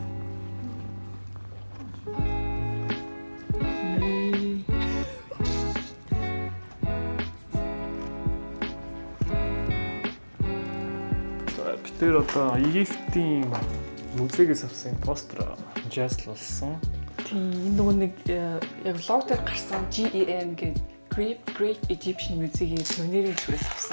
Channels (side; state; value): both; inverted; correlation -1.00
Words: Тэр одоо Египтийн музейгээс авсан постэр жааслуулсан. Тийм энэ нөгөө нэг яг лог дээр гарсан GEM гэдэг Great Egyptian Museum-ийн сувенирийн зүгээс